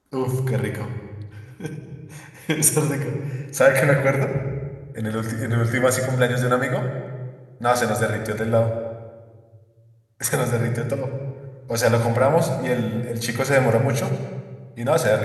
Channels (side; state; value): both; identical; correlation 1.00